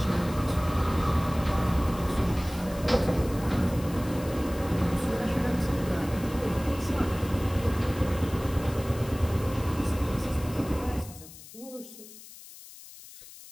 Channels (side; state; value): left; noise; hiss, 17 dB below the sound